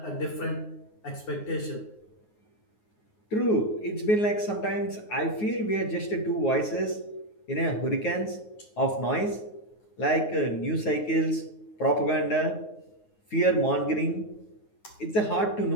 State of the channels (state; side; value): late; right; 9.5 ms